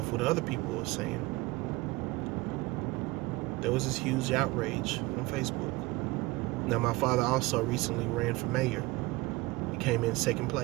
what other people were saying, there was this huge outrage on Facebook. Now, my father also recently ran for mayor. He came in second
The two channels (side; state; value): left; quieter; 21.6 dB